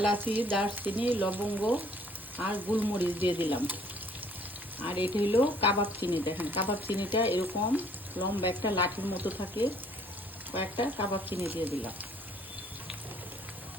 দারচিনি, লবঙ্গ আর গোলমরিচ দিয়ে দিলাম। আর এটা হলো কাবাব চিনি। দেখেন কাবাব চিনিটা এরকম লম্বা একটা লাঠির মতো থাকে, কয়েকটা কাবাব চিনি দিয়ে দিলাম।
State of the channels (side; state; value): both; normal; correlation 0.60